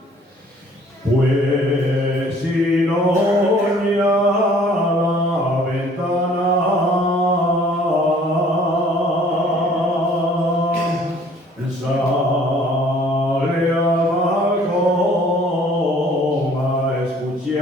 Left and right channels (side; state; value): both; normal; correlation 0.55